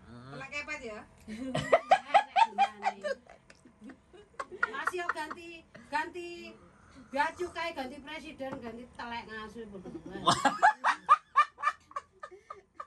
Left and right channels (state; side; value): identical; both; correlation 1.00